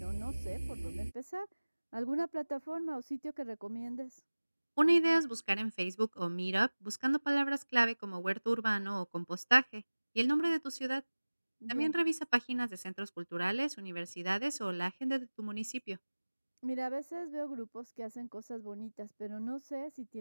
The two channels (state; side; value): inverted; both; correlation -1.00